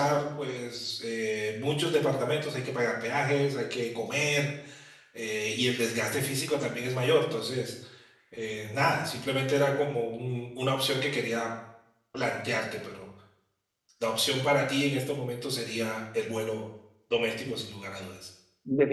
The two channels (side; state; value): both; identical; correlation 1.00